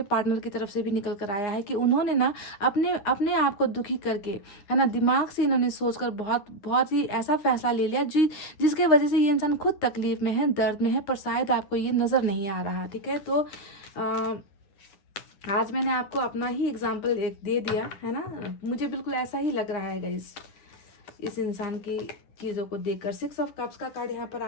पार्टनर की तरफ से भी निकल कर आया है कि उन्होंने ना अपने आप को दुखी करके, है ना, दिमाग से इन्होंने सोचकर बहुत ही ऐसा फैसला ले लिया जिसके वजह से ये इंसान खुद तकलीफ में है, दर्द में है, पर शायद आपको ये नज़र नहीं आ रहा, ठीक है। तो आज मैंने आपको अपना ही एग्जाम्पल एक दे दिया, है ना, मुझे बिल्कुल ऐसा ही लग रहा है गाइस इस इंसान की चीज़ों को देखकर। 6 ऑफ कप्स का कार्ड यहाँ पर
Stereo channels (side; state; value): right; late; 9.7 ms